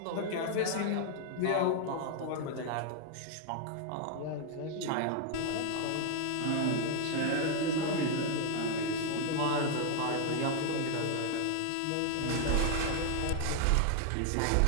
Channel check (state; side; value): different; both; correlation 0.00